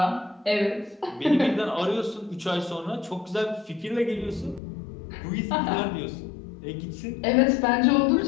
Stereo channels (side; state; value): right; drops out; at 4.6 s